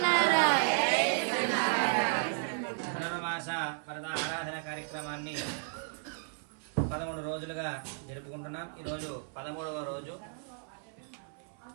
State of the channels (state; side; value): silent; left; 55 dB below the other